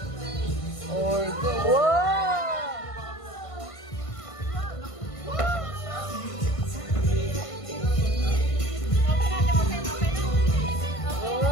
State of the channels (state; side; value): late; right; 1.5 ms